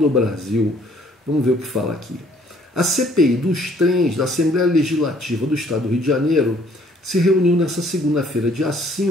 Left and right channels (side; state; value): both; normal; correlation 0.61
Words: Brasil. Vamos ver o que fala aqui. A CPI dos trens da Assembleia Legislativa do Estado do Rio de Janeiro se reuniu nesta segunda-feira, dia